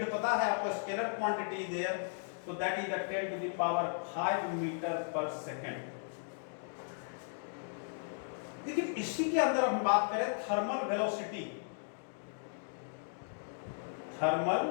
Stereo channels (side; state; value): right; silent; digital silence